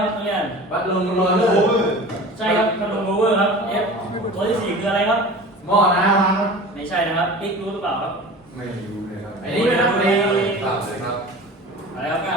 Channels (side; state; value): both; normal; correlation 0.38